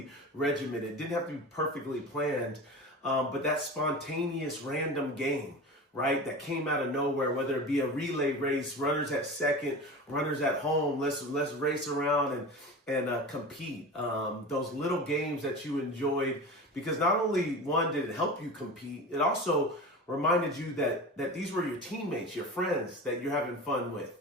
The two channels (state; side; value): normal; both; correlation 0.31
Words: regimented. It didn't have to be perfectly planned. But that spontaneous random game, right, that came out of nowhere, whether it be a relay race, runners at second, runners at home, let's race around and compete. Those little games that you enjoyed, because not only one did it help you compete, it also reminded you that these were your teammates, your friends that you're having fun with,